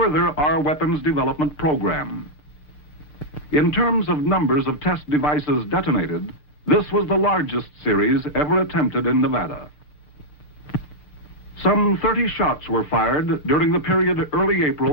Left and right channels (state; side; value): normal; both; correlation -0.04